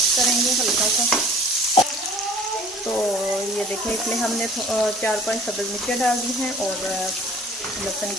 करेंगे हल्का सा। तो ये देखें इसमें हमने 4-5 सब्ज़ मिर्चें डाल दी हैं और लहसुन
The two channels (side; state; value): both; normal; correlation 0.49